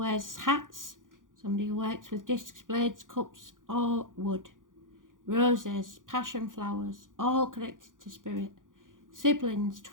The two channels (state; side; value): late; left; 0.89 ms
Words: hats, somebody who works with discs, blades, cups or wood. Roses, passion flowers, all connected to spirit. Siblings,